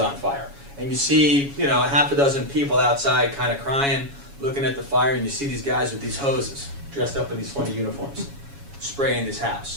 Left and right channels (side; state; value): left; late; 7.2 ms